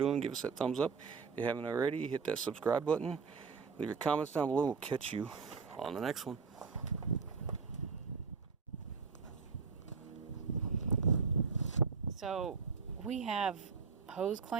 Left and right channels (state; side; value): quieter; left; 5.2 dB